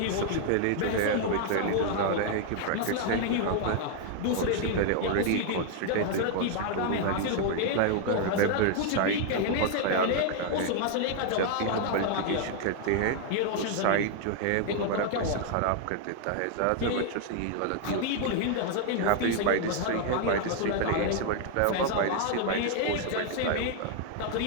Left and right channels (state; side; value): different; both; correlation 0.00